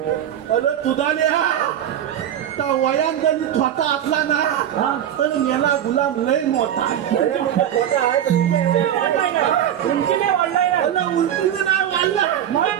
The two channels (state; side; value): quieter; left; 10.5 dB